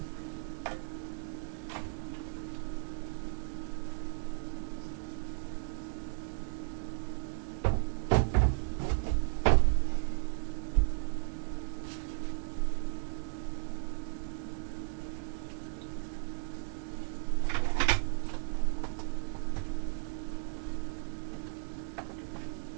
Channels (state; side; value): silent; left; digital silence